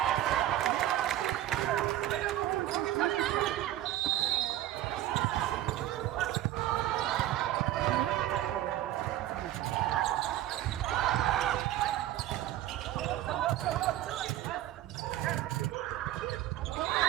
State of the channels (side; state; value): left; quieter; 13.5 dB